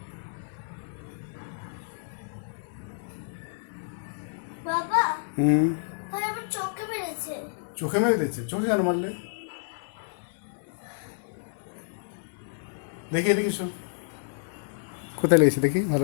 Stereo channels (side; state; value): right; silent; 58 dB below the other